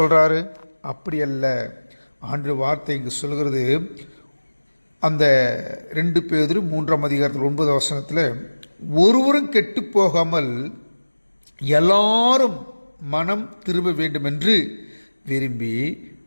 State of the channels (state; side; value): inverted; both; correlation -1.00